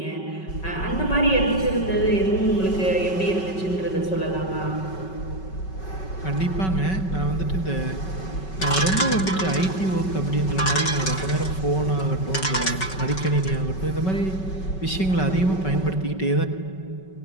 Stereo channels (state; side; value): late; right; 5.3 ms